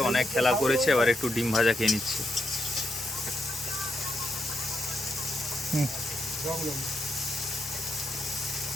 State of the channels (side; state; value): both; normal; correlation 0.81